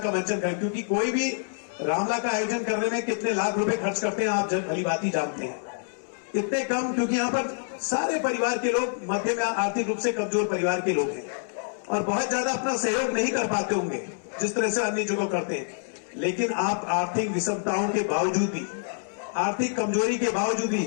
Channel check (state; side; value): silent; right; 60 dB below the other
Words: मंचन कर, क्योंकि कोई भी रामला का आयोजन करने में कितने लाख रुपए खर्च करते हैं आप भली बात ही जानते हैं। इतने कम, क्योंकि यहाँ पर सारे परिवार के लोग मध्यम या आर्थिक रूप से कमजोर परिवार के लोग हैं और बहुत ज्यादा अपना सहयोग नहीं कर पाते होंगे जिस तरह से अन्य जगह करते हैं। लेकिन आप आर्थिक विषमताओं के बावजूद भी, आर्थिक कमजोरी के बावजूद भी,